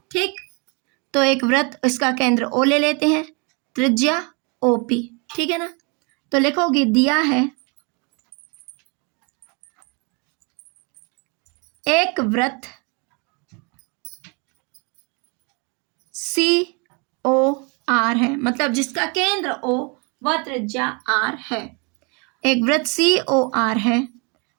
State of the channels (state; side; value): quieter; left; 32.4 dB